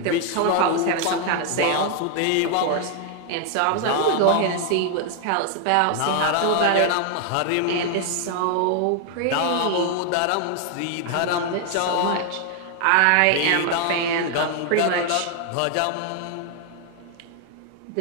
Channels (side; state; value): both; different; correlation 0.00